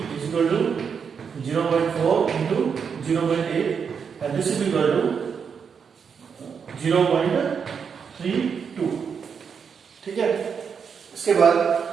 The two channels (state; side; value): quieter; left; 6.5 dB